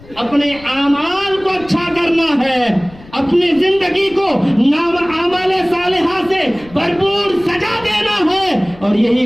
اپنے اعمال کو اچھا کرنا ہے, اپنی زندگی کو اعمال صالحہ سے بھرپور سجا دینا ہے, اور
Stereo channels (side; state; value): left; noise; rumble, 22 dB below the sound